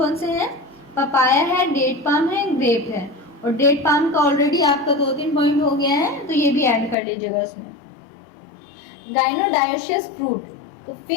से हैं, पपाया है, डेट पाम है, ग्रेप है। और डेट पाम का ऑलरेडी आपका 2-3 पॉइंट हो गया है तो ये भी ऐड कर लीजिएगा उसमें। गाइनोडायोशियस फ्रूट, तो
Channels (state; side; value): drops out; right; at 7.0 s